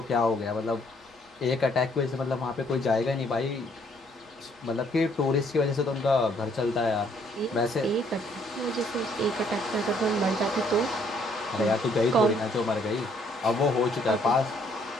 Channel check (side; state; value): both; normal; correlation 0.66